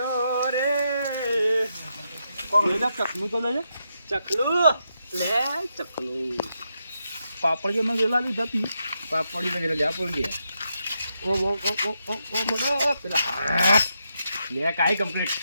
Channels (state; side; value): inverted; both; correlation -0.83